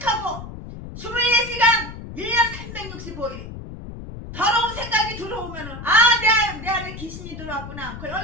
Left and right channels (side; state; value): left; noise; rumble, 11 dB below the sound